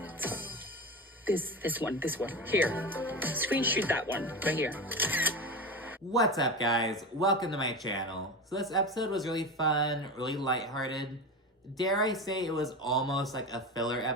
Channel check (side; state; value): both; normal; correlation 0.24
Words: this one. Here. Screenshot that one right here. What's up, guys? Welcome to my channel. So this episode was really fun, really lighthearted. Dare I say it was almost like a filler